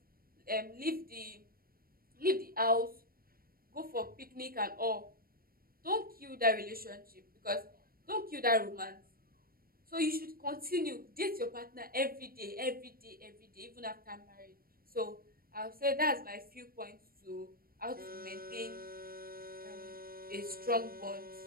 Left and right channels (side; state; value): left; late; 0.43 ms